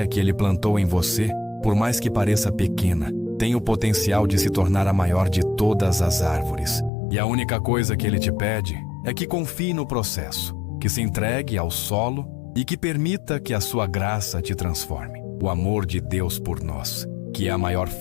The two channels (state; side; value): drops out; right; at 6.9 s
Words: que Ele plantou em você, por mais que pareça pequena, tem o potencial de se tornar a maior de todas as árvores. E a única coisa que Ele te pede é que confie no processo, que se entregue ao solo e que permita que a sua graça te transforme. O amor de Deus por nós, que é a maior